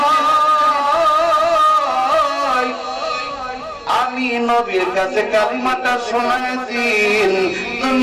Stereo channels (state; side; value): identical; both; correlation 1.00